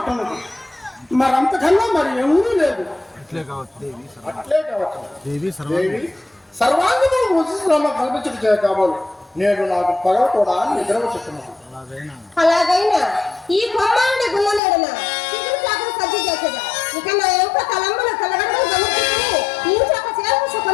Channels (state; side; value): drops out; right; at 14.6 s